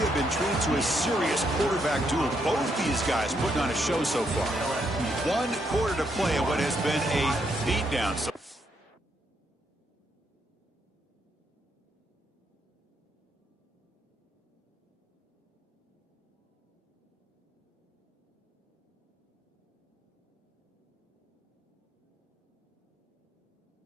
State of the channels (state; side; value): normal; both; correlation 0.76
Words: been treated to a serious quarterback duel. Both these guys putting on a show so far. 1 quarter to play in what has been a beatdown. So